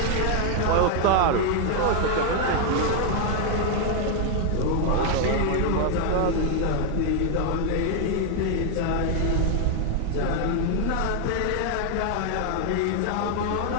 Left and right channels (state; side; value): different; both; correlation 0.00